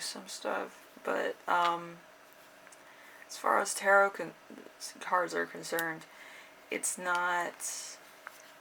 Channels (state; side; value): identical; both; correlation 1.00